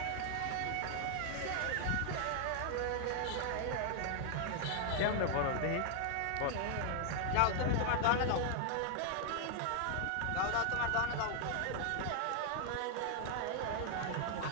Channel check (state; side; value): different; both; correlation 0.00